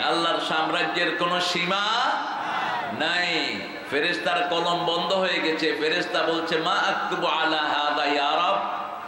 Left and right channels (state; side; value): identical; both; correlation 1.00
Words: আল্লাহর সাম্রাজ্যের কোনো সীমা নাই। ফেরেশতার কলম বন্ধ হয়ে গেছে। ফেরেশতা বলছে, মা আকতুবু আলা হাযা ইয়া রাব,